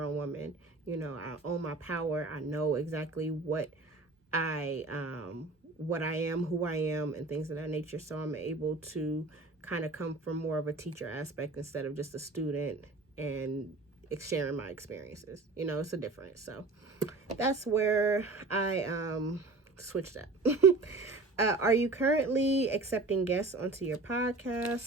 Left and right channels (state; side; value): quieter; left; 3.4 dB